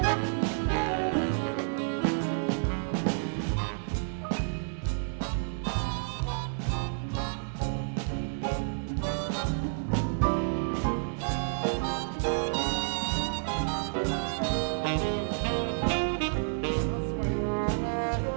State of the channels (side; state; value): left; silent; digital silence